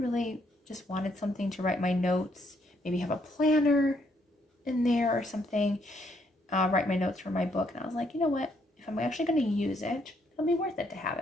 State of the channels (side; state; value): both; normal; correlation 0.72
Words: just wanted something to write my notes, maybe have a planner in there or something, write my notes for my book. And I was like, you know what? If I'm actually going to use it, it'll be worth it to have